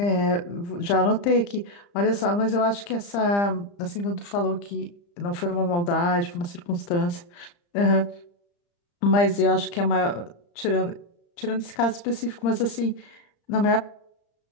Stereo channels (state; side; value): late; right; 35 ms